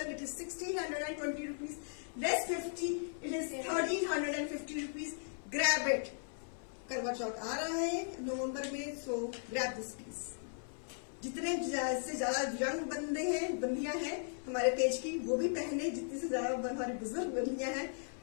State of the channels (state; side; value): silent; right; 53 dB below the other